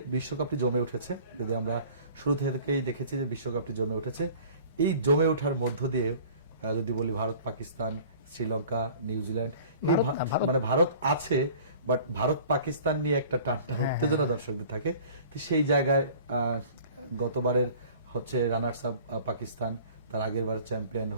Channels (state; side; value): inverted; both; correlation -0.47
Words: বিশ্বকাপটি জমে উঠেছে, যদি আমরা শুরু থেকেই দেখেছি যে বিশ্বকাপটি জমে উঠেছে, এই জমে ওঠার মধ্য দিয়ে যদি বলি ভারত, পাকিস্তান, শ্রীলঙ্কা, নিউজিল্যান্ড, এই মানে ভারত আছে, বাট ভারত পাকিস্তান নিয়ে একটা টানটান উত্তেজনা দর্শকদের থাকে। তো সেই জায়গায় গতবারের হচ্ছে রানার্স আপ পাকিস্তান, তার আগের বার চ্যাম্পিয়ন